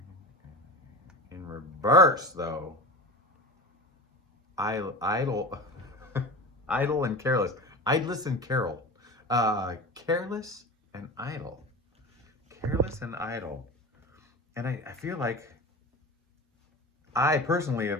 In reverse, though, idle, idle and careless. Idless and carol. Careless and idle. Careless and idle. And I feel like I personally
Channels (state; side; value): normal; both; correlation 0.30